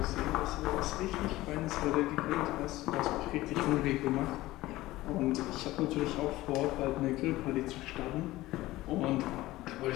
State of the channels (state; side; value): quieter; right; 17.5 dB